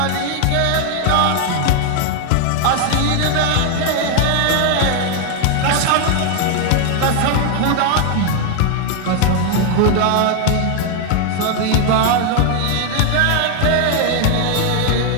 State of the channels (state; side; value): different; both; correlation 0.00